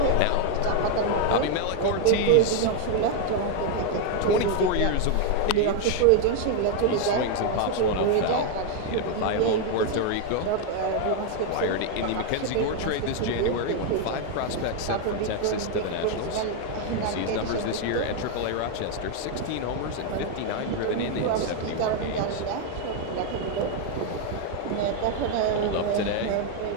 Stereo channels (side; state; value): both; different; correlation 0.01